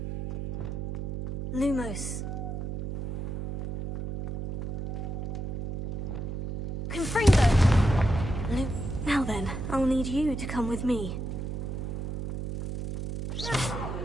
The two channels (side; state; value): right; noise; hum, 5 dB below the sound